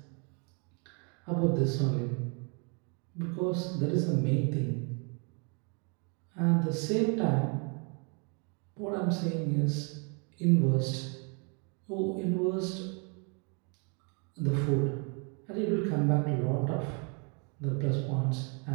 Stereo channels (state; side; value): quieter; left; 36.0 dB